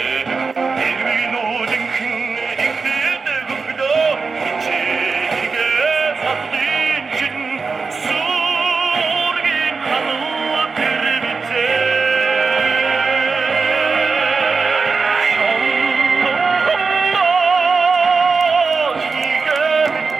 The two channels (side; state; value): left; quieter; 4.6 dB